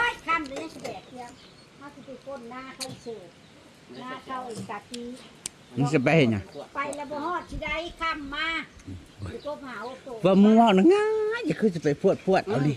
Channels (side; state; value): both; identical; correlation 1.00